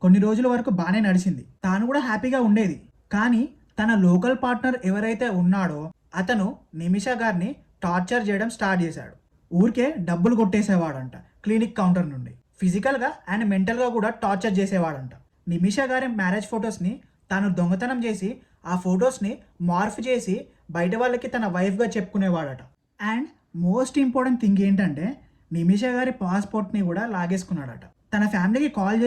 కొన్ని రోజుల వరకు బాగానే నడిచింది. తాను కూడా హ్యాపీగా ఉండేది. కానీ తన లోకల్ పార్ట్నర్ ఎవరైతే ఉన్నాడో అతను నిమిషా గారిని టార్చర్ చేయడం స్టార్ట్ చేశాడు. ఊరికే డబ్బులు కొట్టేసేవాడంట క్లినిక్ కౌంటర్ నుండి. ఫిజికల్గా అండ్ మెంటల్గా కూడా టార్చర్ చేసేవాడంట. నిమిషా గారి మ్యారేజ్ ఫొటోస్ని తాను దొంగతనం చేసి ఆ ఫొటోస్ని మార్ఫ్ చేసి బయట వాళ్ళకి తన వైఫ్గా చెప్పుకునేవాడట. అండ్ మోస్ట్ ఇంపార్టెంట్ థింగ్ ఏంటంటే నిమిషా గారి పాస్పోర్ట్ని కూడా లాగేసుకున్నాడట. తన ఫ్యామిలీకి కాల్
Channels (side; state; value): both; identical; correlation 1.00